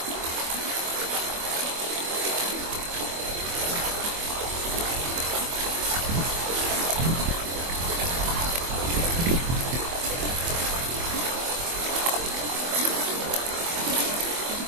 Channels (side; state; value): left; late; 24 ms